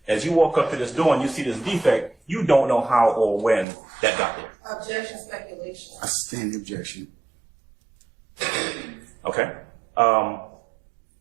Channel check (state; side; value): drops out; left; at 3.7 s